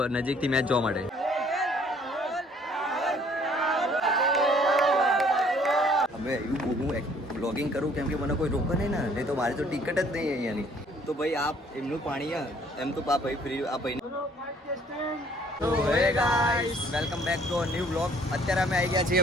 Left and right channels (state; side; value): normal; both; correlation 0.60